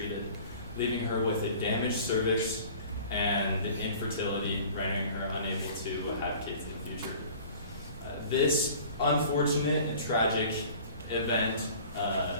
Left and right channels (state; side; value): inverted; both; correlation -0.46